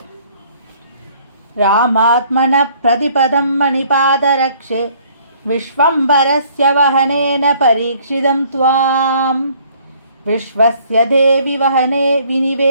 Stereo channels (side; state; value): both; inverted; correlation -0.59